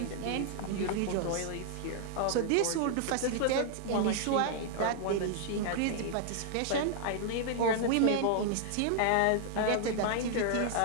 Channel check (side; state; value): both; different; correlation 0.00